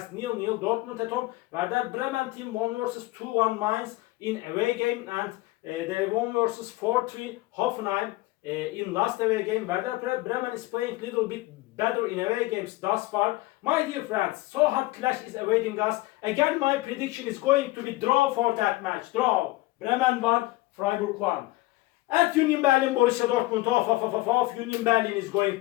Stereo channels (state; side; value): quieter; right; 19.6 dB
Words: 0-0 Dortmund at home. Werder Bremen team won versus 2-1 Mainz in away game, and they won versus 4-3 Hoffenheim in last away game. Werder Bremen is playing a little bit better in away games thus far. My dear friends, so hard clash is awaiting us. Again, my prediction is going to be draw for that match. Draw. Bremen 1, Freiburg 1. At Union Berlin, Borussia Dortmund Union Berlin is going